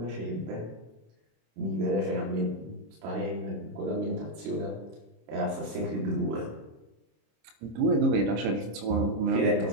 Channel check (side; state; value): left; late; 26 ms